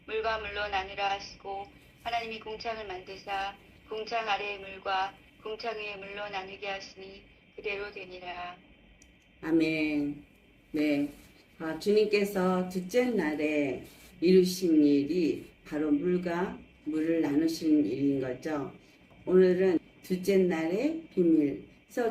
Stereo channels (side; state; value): both; identical; correlation 1.00